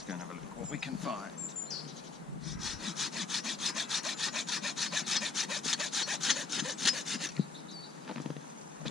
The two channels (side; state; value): right; quieter; 4.2 dB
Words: go and have a look at what we can find.